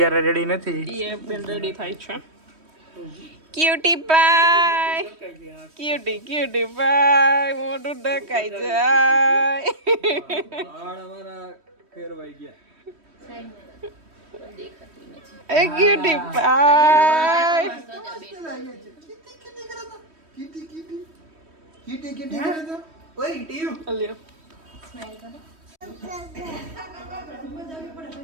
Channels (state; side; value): late; left; 3.1 ms